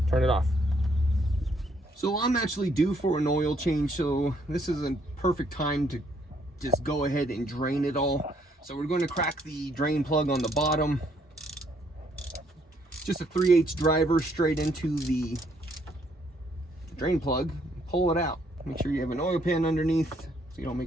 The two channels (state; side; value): normal; both; correlation 0.69